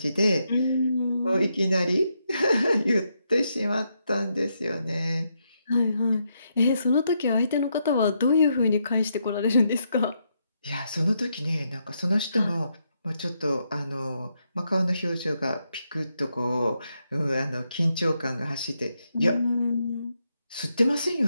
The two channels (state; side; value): inverted; both; correlation -0.80